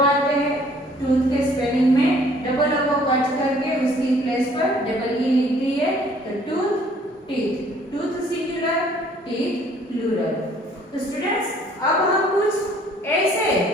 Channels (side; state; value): both; normal; correlation 0.58